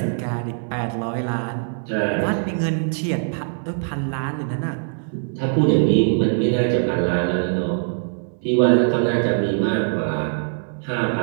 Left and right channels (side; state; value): left; silent; digital silence